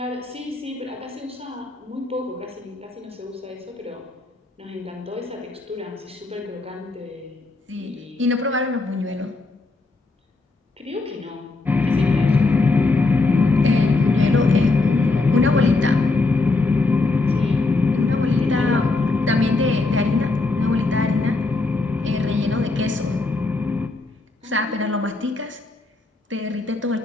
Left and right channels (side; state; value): right; quieter; 3.4 dB